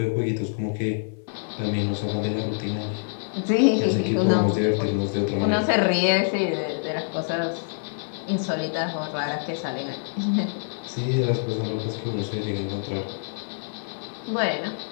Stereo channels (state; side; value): silent; right; digital silence